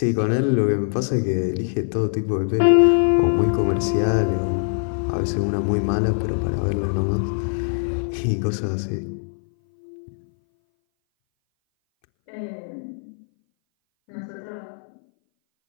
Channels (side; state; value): right; silent; 60 dB below the other